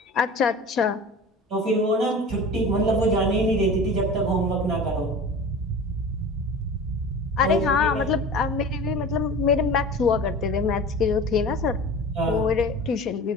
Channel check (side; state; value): both; normal; correlation 0.37